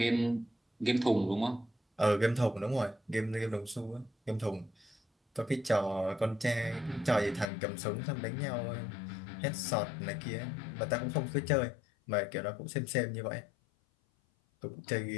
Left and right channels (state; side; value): drops out; right; at 7.5 s